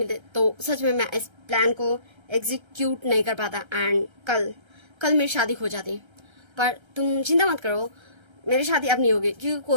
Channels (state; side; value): late; left; 1.3 ms